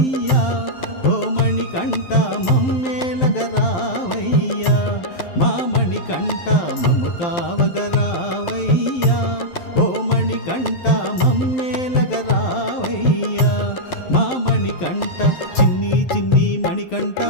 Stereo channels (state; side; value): late; right; 12 ms